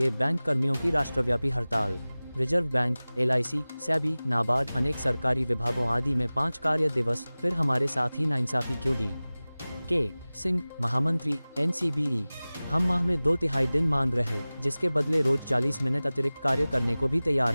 बैंक कर्मियों की राष्ट्रव्यापी हड़ताल। Reserve bank, LIC, SEBI, NABARD, अनेक सरकारी विभागों आदि में 5 कार्य दिवस। फिर हमारे साथ ही नाइंसाफी क्यों दी? के सिंह, महामंत्री, NCBE। हम माह में 2/3 दिन मांग रहे, जिसके बदले रोज 40 मिनट अतिरिक्त कार्य करने को भी तैयार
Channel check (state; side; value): inverted; both; correlation -0.98